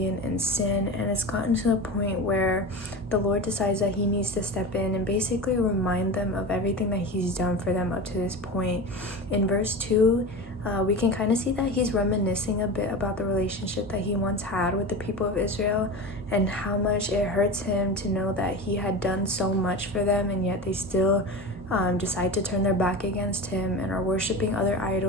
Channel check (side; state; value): both; normal; correlation 0.27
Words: and sin, and it's gotten to the point where the Lord decides that he needs to step in and basically remind them of everything that he's done for them up to this point. In verse 2, we can kind of see that he's reminiscing a bit about the relationship that he once had with the people of Israel and how much it hurts him to know that he had done so much for them, and yet they still decide to turn their back against him and are worshiping other